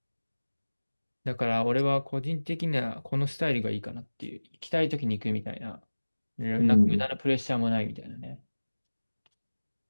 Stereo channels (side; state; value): both; inverted; correlation -1.00